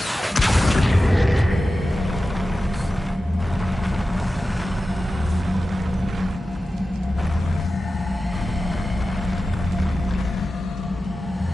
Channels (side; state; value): both; normal; correlation 0.94